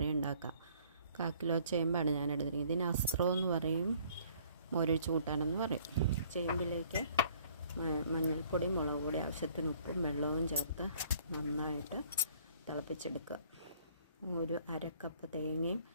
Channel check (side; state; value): both; inverted; correlation -0.58